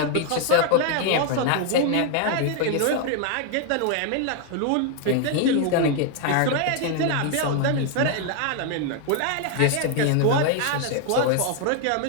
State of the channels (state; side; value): different; both; correlation 0.00